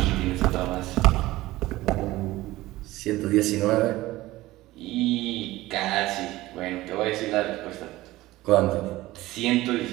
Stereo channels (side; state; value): left; quieter; 17.6 dB